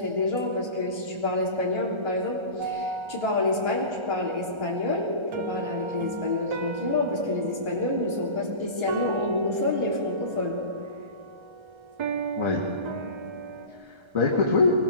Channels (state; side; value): late; left; 1.3 ms